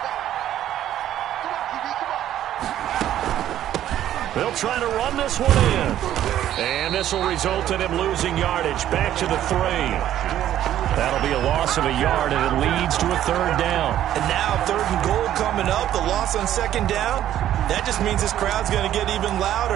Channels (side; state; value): left; quieter; 11.9 dB